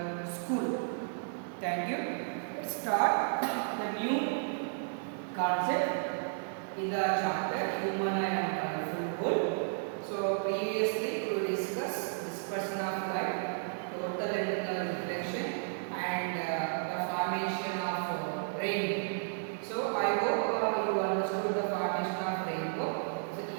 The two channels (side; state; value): left; silent; digital silence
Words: school. Thank you. Let's start the new concept in the chapter Human Eye and Colorful World. So previously we discussed dispersion of light, total retinal reflection, and the formation of rainbow. So I hope you understood the formation of rainbow. So